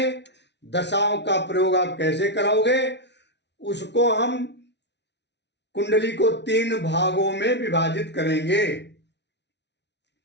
दशाओं का प्रयोग आप कैसे कराओगे, उसको हम कुंडली को 3 भागों में विभाजित करेंगे।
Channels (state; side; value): late; right; 0.50 ms